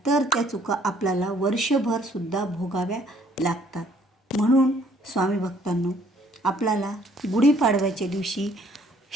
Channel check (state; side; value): normal; both; correlation 0.62